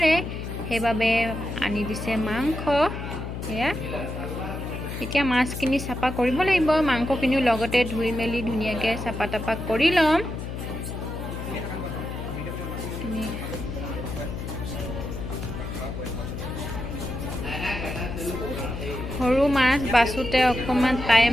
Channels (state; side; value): noise; left; hum, 6 dB below the sound